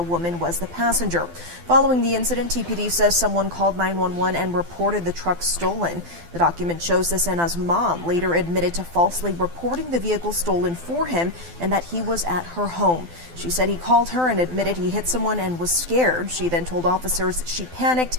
woman was the passenger. Following the incident, TPD says someone called 911 and reported the truck stolen. The document shows Cesena's mom later admitted to falsely reporting the vehicle stolen for him and that he was at her home. She said he called her and admitted he hit someone and was scared. She then told officers she panicked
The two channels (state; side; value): late; left; 12 ms